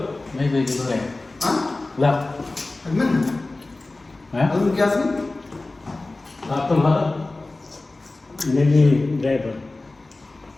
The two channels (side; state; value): right; quieter; 3.1 dB